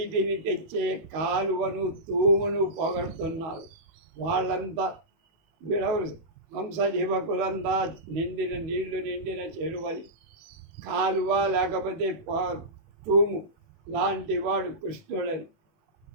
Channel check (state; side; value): late; left; 18 ms